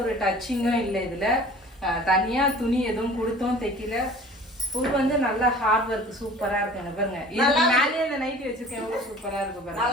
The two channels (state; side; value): normal; both; correlation 0.45